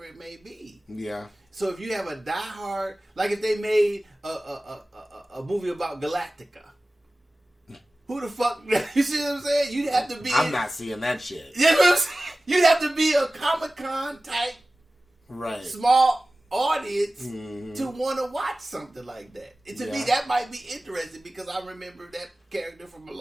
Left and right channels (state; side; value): normal; both; correlation 0.97